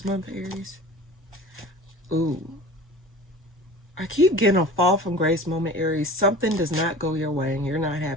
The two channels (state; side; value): normal; both; correlation 0.40